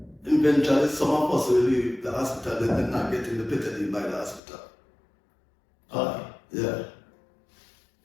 eventually some of us will leave the hospital and then not getting the betadine by the hospital. Okay. Yeah.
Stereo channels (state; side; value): drops out; right; at 4.4 s